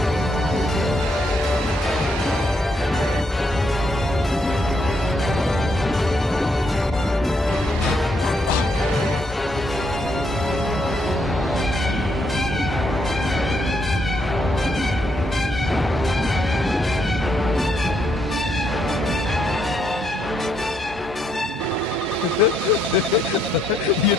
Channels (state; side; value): normal; both; correlation 0.75